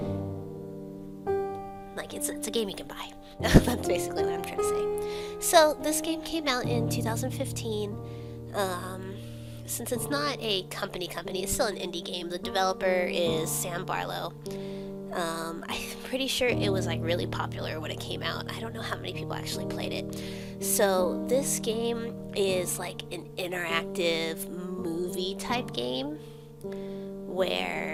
it's a game you can buy. That's basically what I'm trying to say. So, this game came out in 2015. Since it's not a company, it's still an indie game. The developer is Sam Barlow. I'm pretty sure it was like really popular when it came out. I don't know how many people actually played it. So this game is like an interactive movie type game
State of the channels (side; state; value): both; identical; correlation 1.00